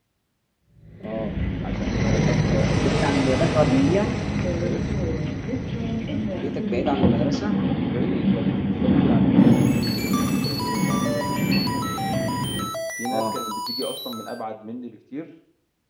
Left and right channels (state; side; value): identical; both; correlation 1.00